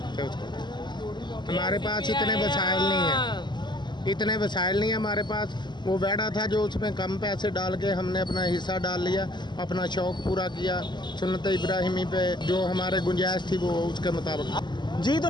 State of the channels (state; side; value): late; right; 0.21 ms